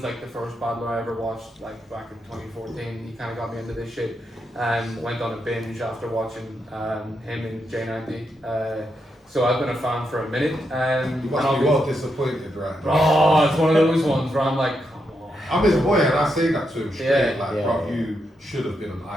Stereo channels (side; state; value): both; normal; correlation 0.82